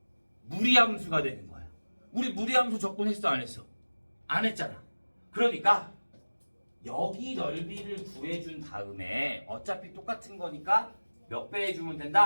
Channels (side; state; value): both; inverted; correlation -1.00